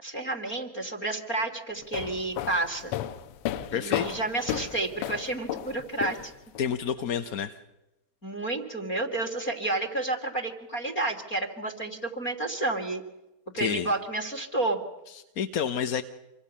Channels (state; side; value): late; right; 4.3 ms